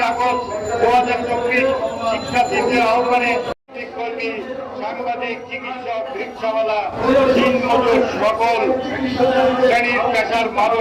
আগস্ট 2024 শিক্ষার্থীদের আহ্বানে কর্মী, সাংবাদিক, চিকিৎসক, রিক্সাওয়ালা, দিনমজুর সকল শ্রেণীর পেশার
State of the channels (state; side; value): identical; both; correlation 1.00